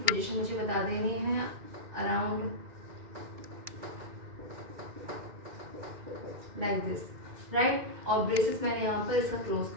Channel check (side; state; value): left; late; 2.2 ms